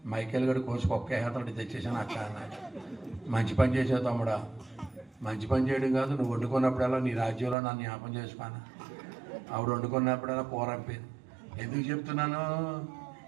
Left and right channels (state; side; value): drops out; left; at 7.6 s